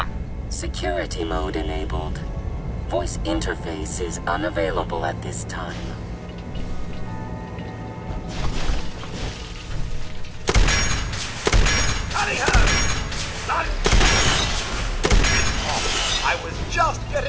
Security mode enabled. Voice interface is unavailable at this time. Hurry her! Run! I was just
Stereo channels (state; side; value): identical; both; correlation 1.00